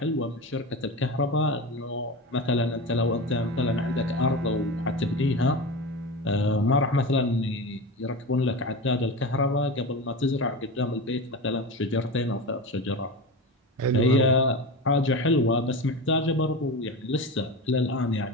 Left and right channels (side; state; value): both; normal; correlation 0.25